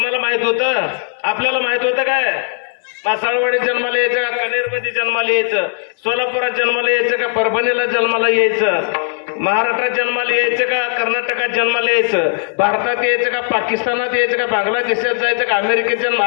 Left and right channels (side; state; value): right; silent; 63 dB below the other